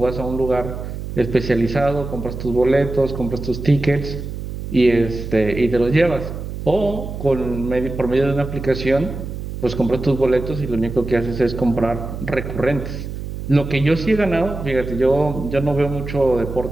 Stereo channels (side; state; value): right; noise; hum, 7 dB below the sound